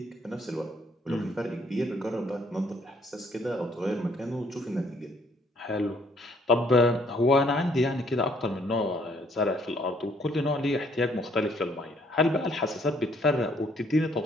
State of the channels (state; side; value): normal; both; correlation 0.65